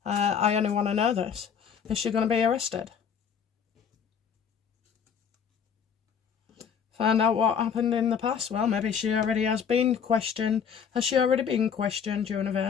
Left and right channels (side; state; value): right; quieter; 7.2 dB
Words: I only want to know this. Is she going to be arrested? Find out what happened in the past. Well, maybe she already has been questioned. Has she already been questioned,